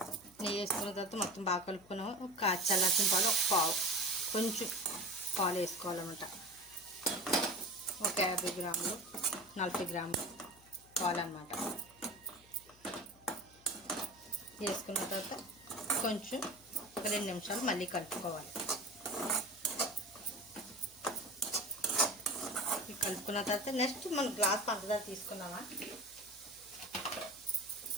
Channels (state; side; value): noise; left; hum, 26 dB below the sound